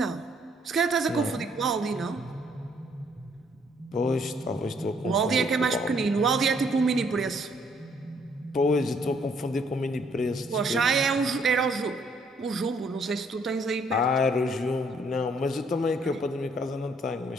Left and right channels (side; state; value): both; normal; correlation 0.66